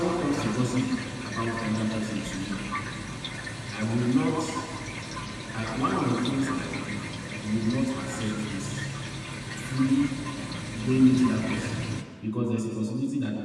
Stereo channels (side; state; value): both; identical; correlation 1.00